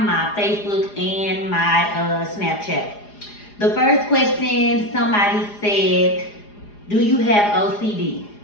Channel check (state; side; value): late; right; 4.9 ms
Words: my Facebook, and my Snapchat. The first question, somebody said, do you have OCD?